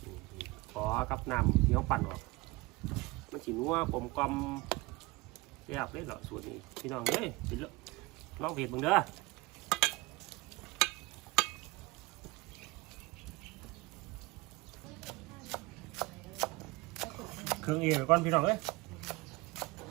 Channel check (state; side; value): quieter; left; 22.8 dB